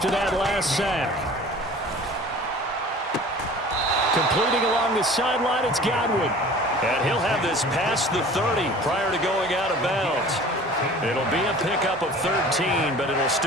that last sack. Completing along the sideline, it's Godwin. And he'll have this past the 30 prior to going out of bounds. It'll be a pickup of 13, but it'll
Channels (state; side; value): normal; both; correlation 0.44